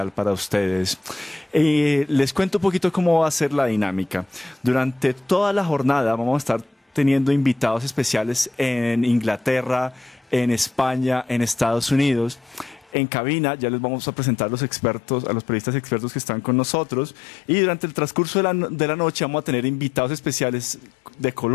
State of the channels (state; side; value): drops out; right; at 13.0 s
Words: para ustedes. Les cuento un poquito cómo va a ser la dinámica. Durante toda la jornada vamos a estar teniendo invitados especiales en Inglaterra, en España, en Estados Unidos. En cabina ya les vamos a presentar a los expertos, a los periodistas expertos que están con nosotros, y durante el transcurso de la noche vamos a tener invitados especiales de